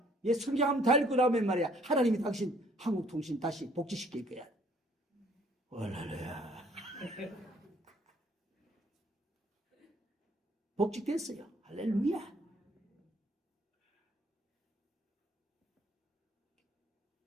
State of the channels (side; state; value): both; normal; correlation 0.61